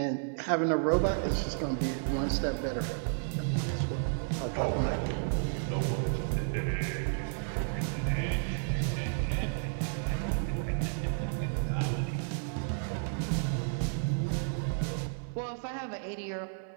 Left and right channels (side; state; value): left; silent; 56 dB below the other